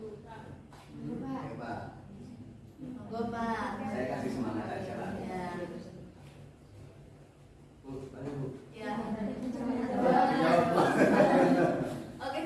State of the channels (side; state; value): both; identical; correlation 1.00